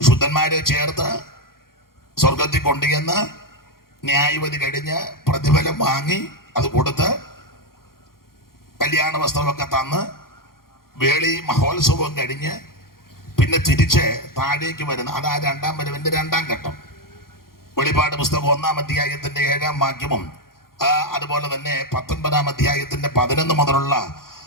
ചേർത്ത് സ്വർഗത്തിൽ കൊണ്ടുചെന്ന് ന്യായവിധി കഴിഞ്ഞ് പ്രതിഫലം വാങ്ങി അത് കൊടുത്ത് കല്യാണ വസ്ത്രമൊക്കെ തന്ന് വേളി മഹോത്സവം കഴിഞ്ഞ് പിന്നെ തിരിച്ച് താഴേക്ക് വരുന്ന അതാ 2-ാം വരവിന്റെ 2-ാം ഘട്ടം. വെളിപ്പാട് പുസ്തകം 1-ാം അധ്യായത്തിന്റെ 7-ാം വാക്യവും അതുപോലെ തന്നെ 19-ാം അധ്യായത്തിന്റെ 11 മുതലുള്ള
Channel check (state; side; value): late; right; 0.92 ms